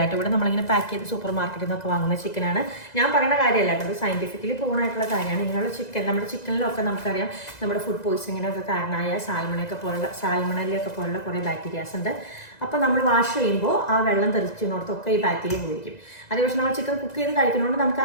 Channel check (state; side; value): late; right; 2.0 ms